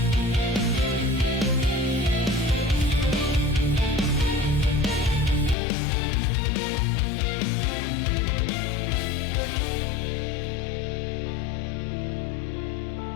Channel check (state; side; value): drops out; right; at 5.6 s